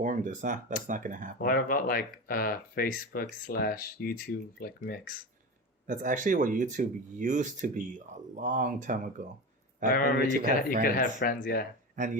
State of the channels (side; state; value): both; normal; correlation 0.25